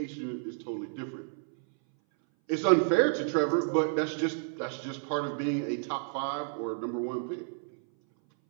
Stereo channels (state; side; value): silent; left; 57 dB below the other